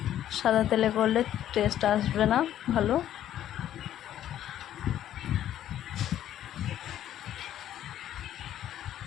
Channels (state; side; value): quieter; right; 11.6 dB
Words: সাদা তেলে করলে টেস্ট আসবে না ভালো।